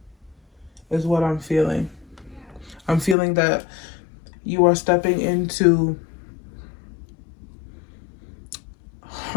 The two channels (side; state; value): right; drops out; at 3.2 s